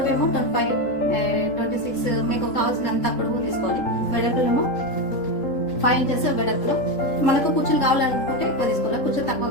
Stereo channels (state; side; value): late; right; 3.8 ms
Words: 25, 26 మీకు కావాల్సినంత పొడవు తీసుకోవాలి. వెడల్పులేమో 5 ఇంచెస్ వెడల్పులో. మనకు కుర్చీలు కావాలనుకుంటే ఎక్కువ తీసుకోవాలి, కుర్చీలు తక్కువ